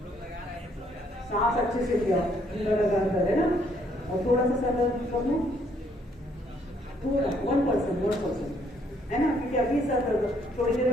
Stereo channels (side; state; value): both; normal; correlation 0.68